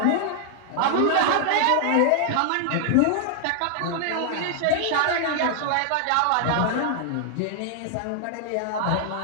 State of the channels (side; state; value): both; different; correlation 0.00